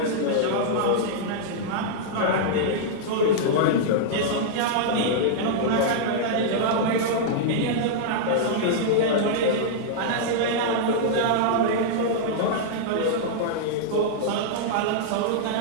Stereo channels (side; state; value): both; different; correlation -0.02